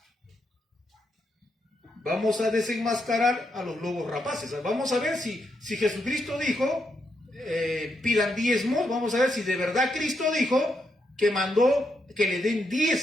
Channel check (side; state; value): both; normal; correlation 0.80